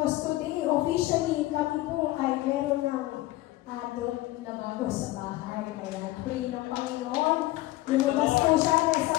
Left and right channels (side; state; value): right; quieter; 17.7 dB